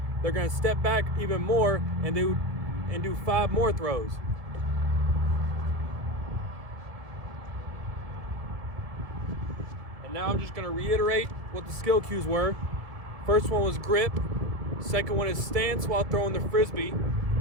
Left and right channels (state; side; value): late; left; 1.7 ms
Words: they're gonna step back even more and do 5 more throws. And now I'm just gonna reiterate what the skill cues were. First one was grip. Second one is stance while throwing the Frisbee.